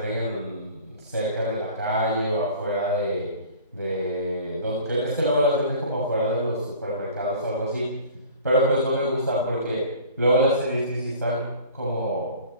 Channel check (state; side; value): inverted; both; correlation -0.45